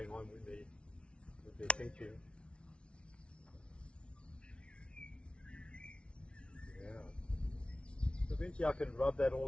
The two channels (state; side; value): late; right; 0.059 ms